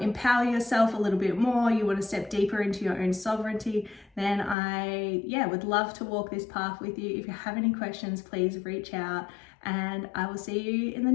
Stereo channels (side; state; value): right; drops out; at 4.5 s